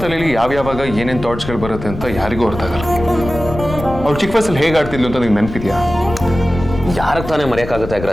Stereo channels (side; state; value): left; noise; rumble, 10 dB below the sound